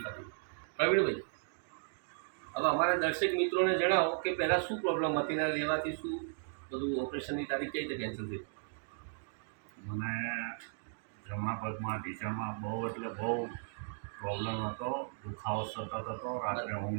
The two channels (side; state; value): left; silent; digital silence